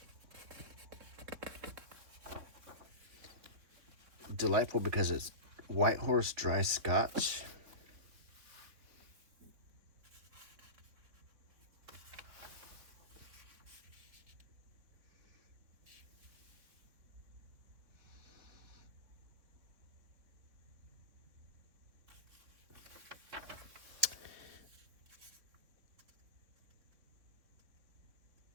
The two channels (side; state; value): left; late; 3.8 ms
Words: Delightful because it's White Horse Dry Scotch.